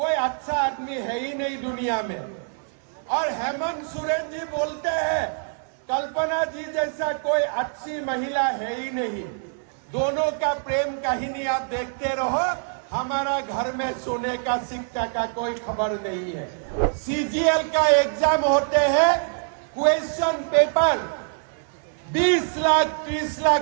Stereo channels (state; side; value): silent; left; 62 dB below the other